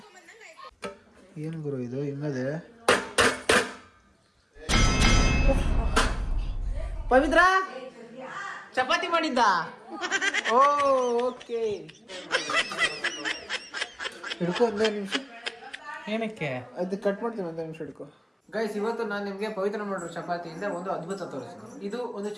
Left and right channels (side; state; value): both; identical; correlation 1.00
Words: ಏನು ಗುರು ಇದು ಹಿಂಗದೆ? ಪವಿತ್ರ ಚಪಾತಿ ಮಾಡಿದ್ದ? ಓ ಓಕೆ, ಹಿಡ್ಕೊ ಒಂದೇ ನಿಮಿಷ. ಏನಕ್ಕೆ ಅದು ಕಟ್ ಮಾಡ್ತೀನಿ, ಒಂದೇ ನಿಮಿಷ ಹಿಡ್ಕೊ. ಗೈಸ್ ಇವತ್ತು ನಾನು ನಿಮಗೆ ಪವಿತ್ರ ಮಾಡಿರೋ ಚಪಾತಿಯಿಂದ ಒಂದು ಅದ್ಭುತ ತೋರಿಸ್ತೀನಿ. ಇದು ಒಂದು